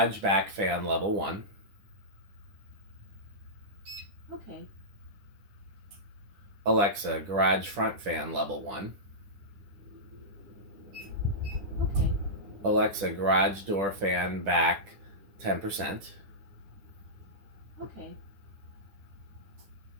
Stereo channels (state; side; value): late; left; 10 ms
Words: back fan level 1. Okay. Alexa, garage front fan level 1. Okay. Alexa, garage door fan back 10%. Okay.